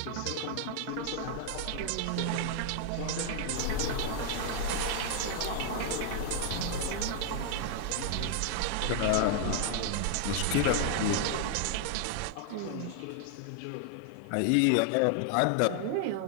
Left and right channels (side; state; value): both; different; correlation 0.00